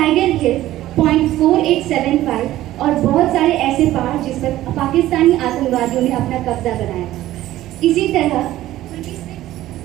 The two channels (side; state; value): left; quieter; 14.8 dB